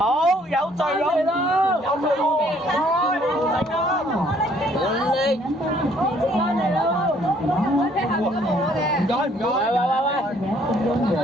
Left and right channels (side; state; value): both; normal; correlation 0.62